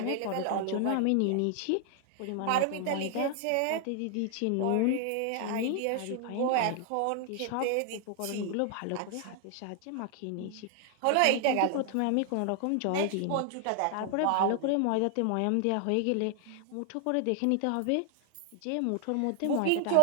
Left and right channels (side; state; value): both; different; correlation 0.00